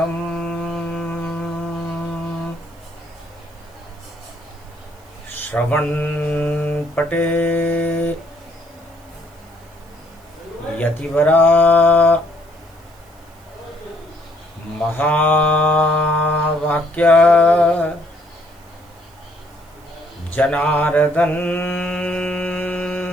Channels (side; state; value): right; noise; hiss, 30 dB below the sound